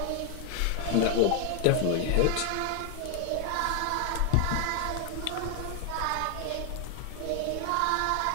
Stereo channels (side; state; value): both; different; correlation 0.00